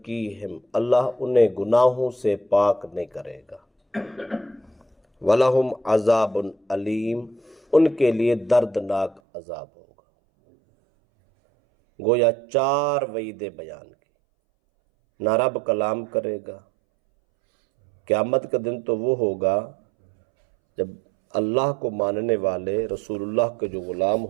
اللہ انہیں گناہوں سے پاک نہیں کرے گا، وَلَهُمْ عَذَابٌ علیم، ان کے لیے دردناک عذاب ہوگا۔ گویا 4 وعیدیں بیان کی، نہ رب کلام کرے گا، قیامت کا دن تو وہ ہوگا جب اللہ کو ماننے والے رسول اللہ کے جو غلام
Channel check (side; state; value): left; drops out; at 9.2 s